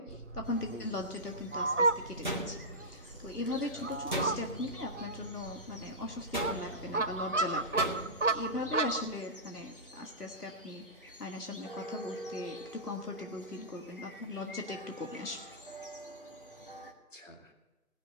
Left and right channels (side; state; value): both; normal; correlation -0.14